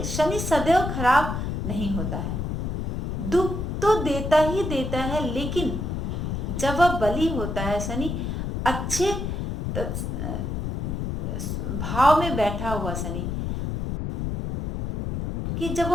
शनि सदैव खराब नहीं होता है। दुख तो देता ही देता है, लेकिन जब वह बली होता है शनि, अच्छे भाव में बैठा हुआ शनि, कि जब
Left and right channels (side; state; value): left; noise; rumble, 3 dB below the sound